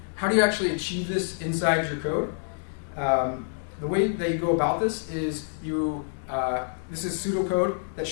how do you actually achieve this inside your code? The way that you go about this is this is pseudocode that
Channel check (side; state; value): right; silent; digital silence